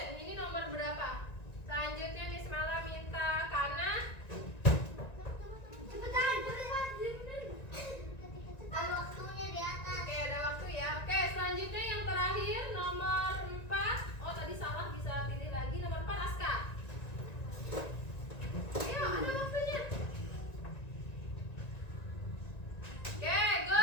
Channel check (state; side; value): late; right; 1.9 ms